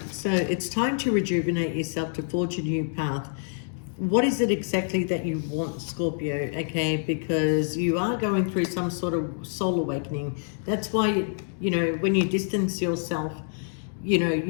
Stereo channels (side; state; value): right; silent; digital silence